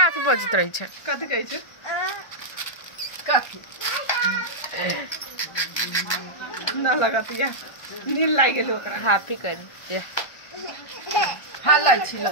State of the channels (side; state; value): right; late; 1.3 ms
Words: अथी बजित रही छै कथि कहै छै कथि न लगतिया नील लाग गेल ओकरा हैप्पी कर ये हल्ला छिल